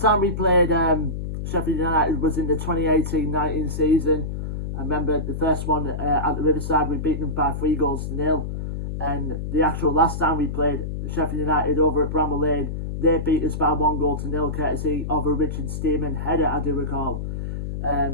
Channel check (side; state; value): left; noise; hum, 4 dB below the sound